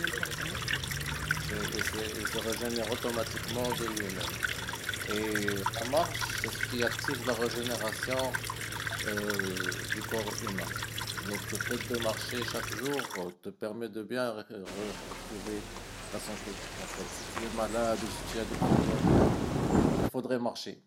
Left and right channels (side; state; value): both; identical; correlation 1.00